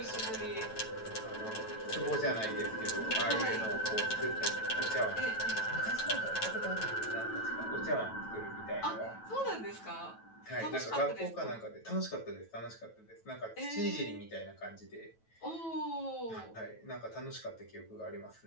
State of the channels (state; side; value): late; right; 9.1 ms